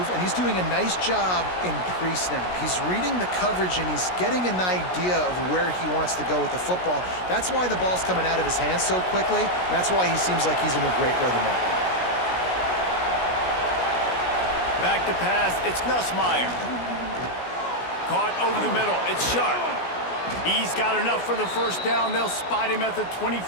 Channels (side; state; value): right; late; 16 ms